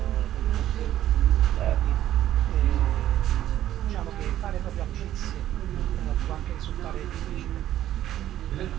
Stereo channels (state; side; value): quieter; left; 12.5 dB